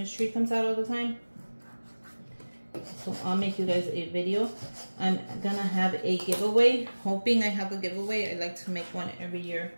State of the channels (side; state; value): both; inverted; correlation -1.00